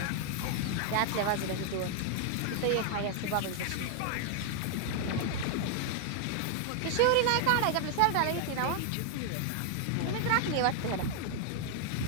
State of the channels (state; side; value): different; both; correlation 0.00